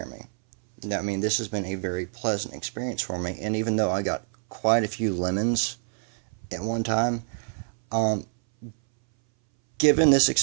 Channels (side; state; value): left; silent; 60 dB below the other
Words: of me. Now, I mean, this has been a very pleasant experience for me, and even though I got quite a few lemons at one time, given this